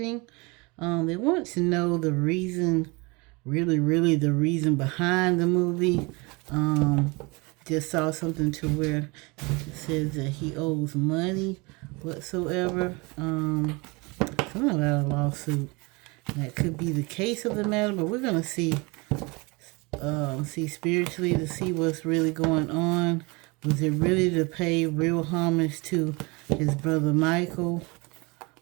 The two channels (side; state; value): left; quieter; 26.9 dB